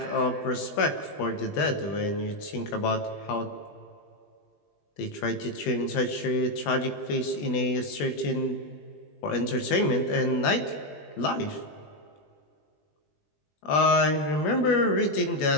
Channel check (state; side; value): late; right; 20 ms